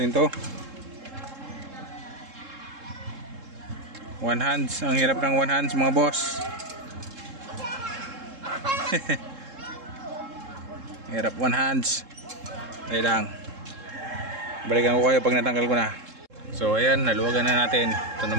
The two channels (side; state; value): left; late; 3.7 ms